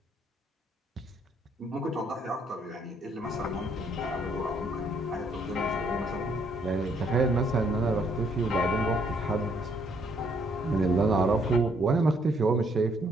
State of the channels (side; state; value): both; normal; correlation 0.68